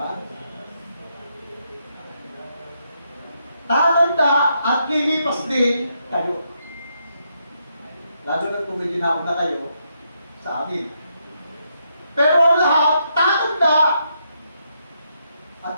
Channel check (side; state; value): both; inverted; correlation -0.78